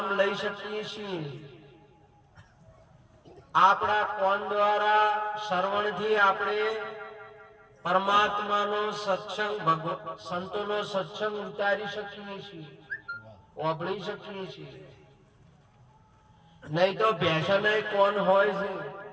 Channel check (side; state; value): both; identical; correlation 1.00